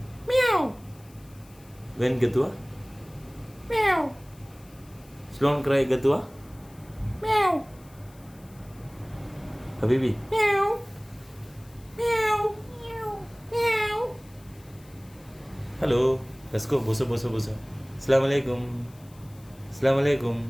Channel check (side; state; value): left; noise; hiss, 27 dB below the sound